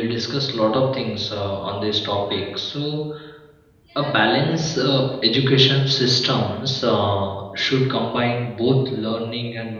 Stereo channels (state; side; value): identical; both; correlation 1.00